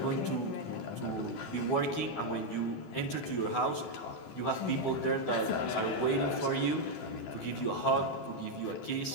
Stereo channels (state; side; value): late; right; 12 ms